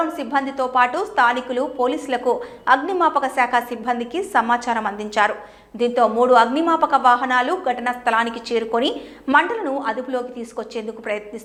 సిబ్బందితో పాటు స్థానికులు పోలీసులకు అగ్నిమాపక శాఖ సిబ్బందికి సమాచారం అందించారు. దీంతో 3 అగ్నిమాపక వాహనాలు ఘటనా స్థలానికి చేరుకొని మంటలను అదుపులోకి తీసుకొచ్చేందుకు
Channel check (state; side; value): identical; both; correlation 1.00